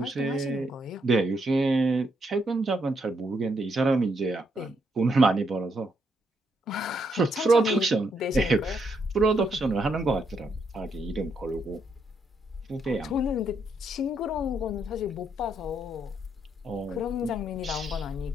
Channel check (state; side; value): normal; both; correlation 0.76